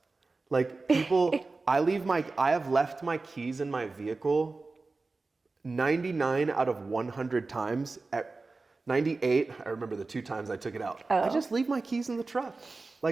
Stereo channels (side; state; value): left; quieter; 3.7 dB